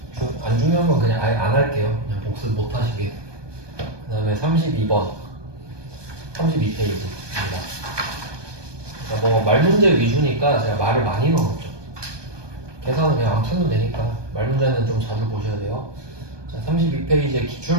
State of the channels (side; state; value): left; late; 1.2 ms